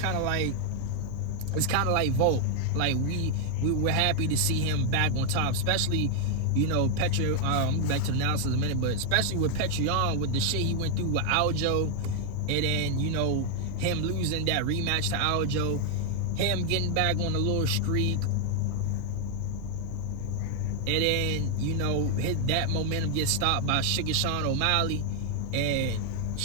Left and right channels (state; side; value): different; both; correlation 0.00